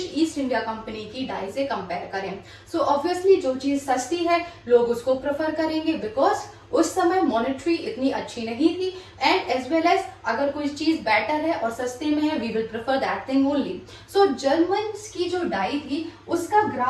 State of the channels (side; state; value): both; identical; correlation 1.00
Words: ईस्ट इंडिया कंपनी की डाई से कंपेयर करें। सो ऑब्वियसली जो चीज सस्ती है लोग उसको प्रेफर करेंगे, बिकॉज उस समय मॉनेटरी इतनी अच्छी नहीं थी, एंड एज वेल एज अगर कोई चीज बेटर है और सस्ते में है, we will prefer that thing only. So Germans की जो डाई थी उसका